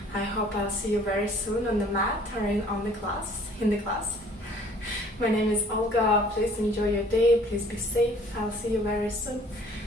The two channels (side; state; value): both; normal; correlation 0.55